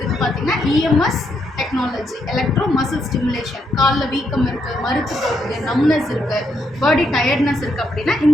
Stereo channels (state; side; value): normal; both; correlation 0.78